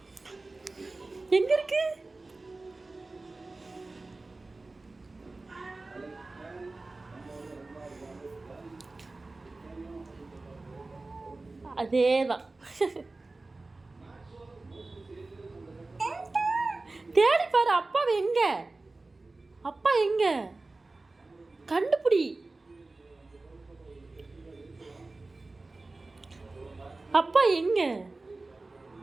எங்க இருக்கு? அதேதான். தேடி பாரு. அப்பா எங்க? அப்பா எங்க? கண்டுபிடி. அப்பா எங்க?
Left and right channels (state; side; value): quieter; left; 3.3 dB